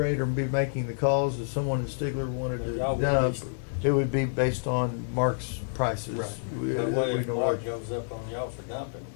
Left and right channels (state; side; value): silent; right; digital silence